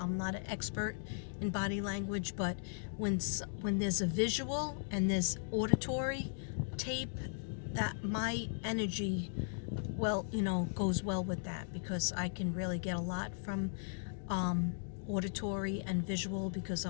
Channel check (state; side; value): silent; right; digital silence